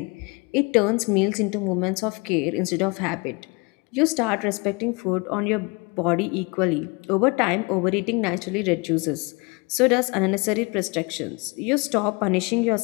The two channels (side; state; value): right; quieter; 28.6 dB